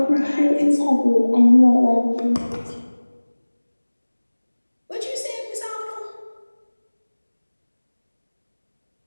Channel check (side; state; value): both; inverted; correlation -1.00